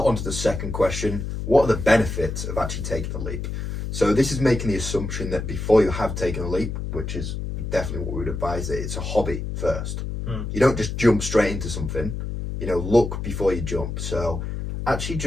on to the second question. What are the benefits of actually taking the leap? So this is making the assumption that before you have taken a leap, which is definitely what we would advise, that it's a hobby first. You don't just jump straight into something, look before you jump. So actually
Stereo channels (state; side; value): noise; left; hum, 5 dB below the sound